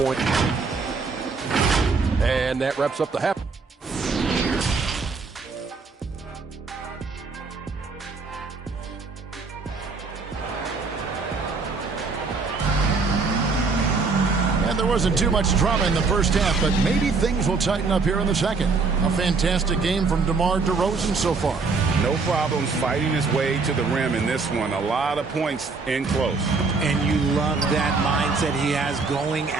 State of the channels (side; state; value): left; quieter; 4.4 dB